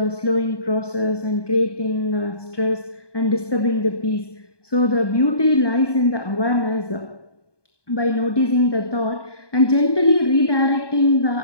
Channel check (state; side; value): late; right; 1.2 ms